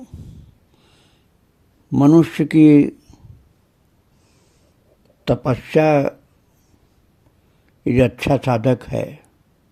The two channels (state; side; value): identical; both; correlation 1.00